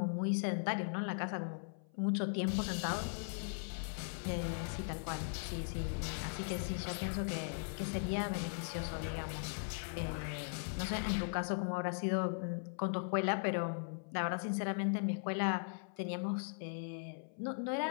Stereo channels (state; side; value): silent; right; 52 dB below the other